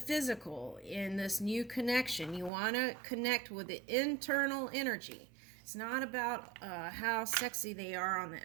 in this new connection. You want to connect with the internal energy. It's not about how sexy they are on the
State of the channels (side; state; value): left; drops out; at 2.5 s